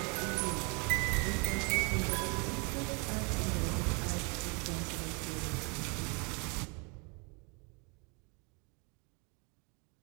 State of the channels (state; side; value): quieter; left; 32.0 dB